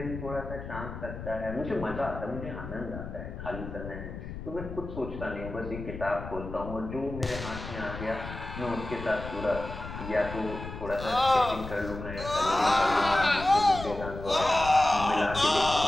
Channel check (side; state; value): left; noise; rumble, 9 dB below the sound